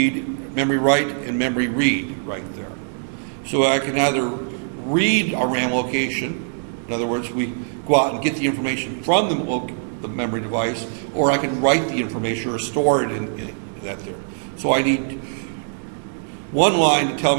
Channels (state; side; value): silent; left; 64 dB below the other